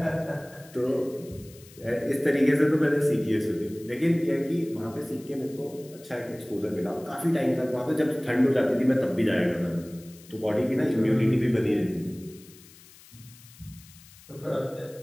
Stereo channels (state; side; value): noise; left; hiss, 23 dB below the sound